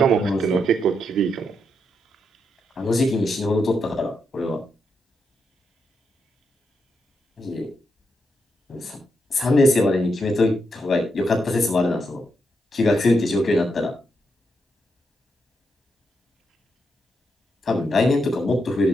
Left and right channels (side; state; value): both; normal; correlation 0.82